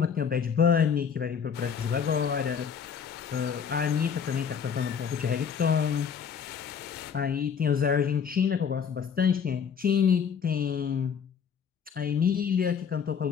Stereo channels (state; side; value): quieter; right; 7.0 dB